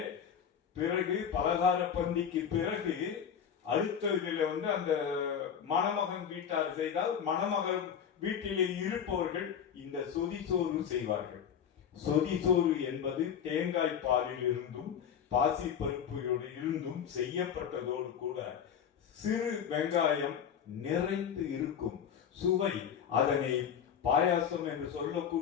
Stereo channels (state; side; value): quieter; right; 8.1 dB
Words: பிறகு பலகார பந்திக்கு பிறகு அடுத்ததில் அந்த மணமகன் வீட்டார் செய்தால் மணமகன் வீட்டிலே இருப்பவர்கள் இந்த சொதி சோறு செய்வார்கள். சொதி சோறு என்பது தேங்காய் பாலில் இருந்தும் பாசி பருப்புகளோடு இருந்தும் செய்யப்பட்டதோடு கூட சிறு வெங்காயம் நிறைந்து இருக்கும். சுவை, அதனை பாயாசம் என்று